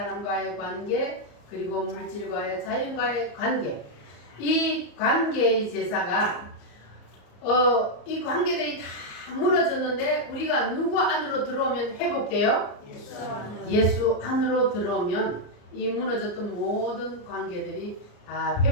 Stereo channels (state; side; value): late; right; 34 ms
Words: 관계, 그리고 물질과의 자연과의 관계. 이 관계의 제사가 이 관계들이 다 무너졌는데 우리가 누구 안으로 들어오면 회복돼요? 예수 안으로 들어오면 이 무너졌던 모든 관계들이 다